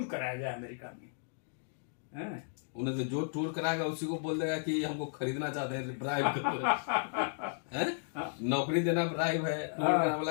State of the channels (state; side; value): silent; right; digital silence